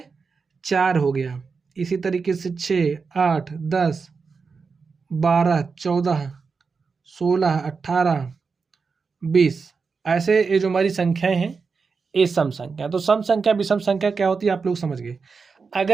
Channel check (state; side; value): quieter; left; 5.0 dB